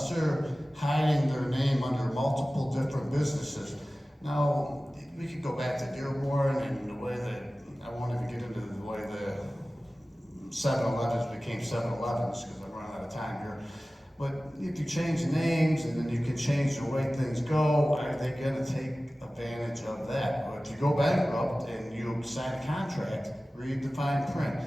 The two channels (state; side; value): normal; both; correlation 0.97